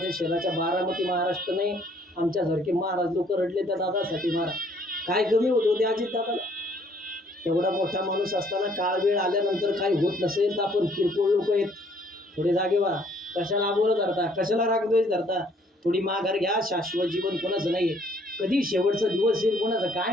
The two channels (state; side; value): normal; both; correlation 0.63